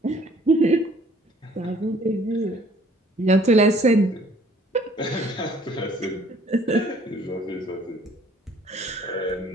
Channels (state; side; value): normal; both; correlation 0.57